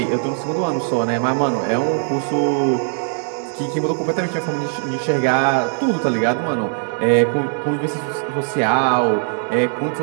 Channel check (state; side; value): silent; left; digital silence